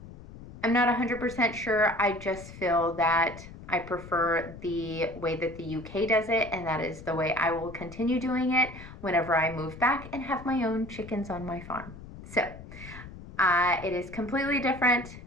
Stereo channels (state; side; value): noise; left; rumble, 15 dB below the sound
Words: not 100% sure. I just feel that I prefer the way that the UK does it, and that is the way I will continue doing it whenever I move back and have my own chickens on my farm. So it is completely different.